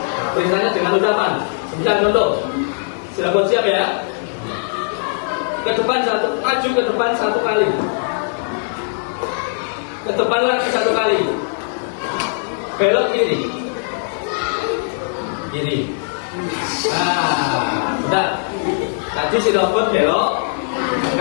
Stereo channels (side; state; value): right; silent; digital silence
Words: Perintahnya dengan ucapan. Misalnya contoh, si robot siap ya? Ke depan maju ke depan 1 kali. Ke depan lagi 1 kali. Belok kiri. Kiri. Nah, sudah. Tadi si robot belok